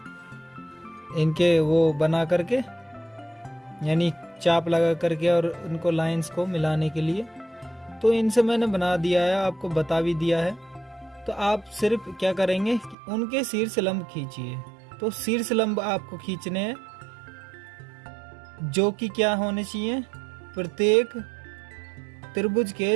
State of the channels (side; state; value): left; drops out; at 13.0 s